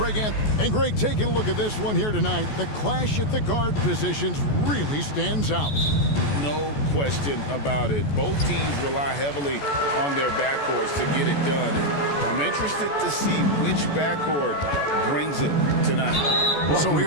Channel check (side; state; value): right; late; 14 ms